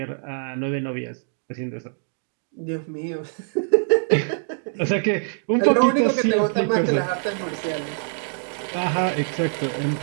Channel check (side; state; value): left; silent; 59 dB below the other